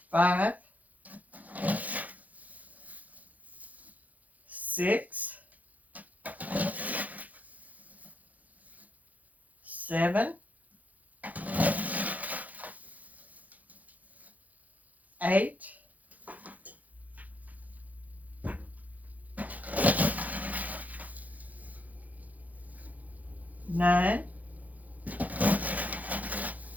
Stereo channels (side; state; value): left; late; 0.078 ms